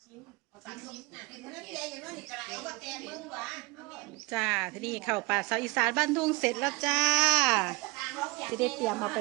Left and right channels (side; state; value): left; quieter; 25.9 dB